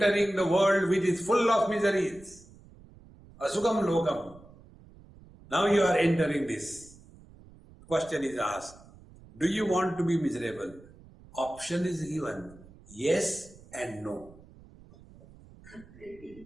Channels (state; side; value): noise; right; rumble, 23 dB below the sound